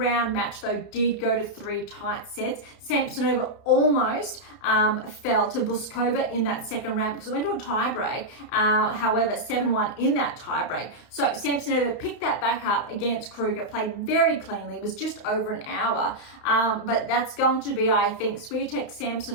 match, though, did go to 3 tight sets. Samsonova almost fell to Buskova in that second round because it went to a tie break. However, 7-1 in that tie break. So Samsonova picked that back up against Kruger, played very cleanly. It was just over an hour. But that's going to be, I think, Swiatek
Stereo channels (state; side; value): late; right; 32 ms